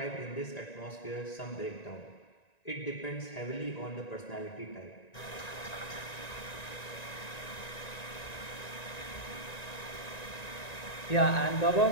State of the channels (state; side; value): late; right; 1.9 ms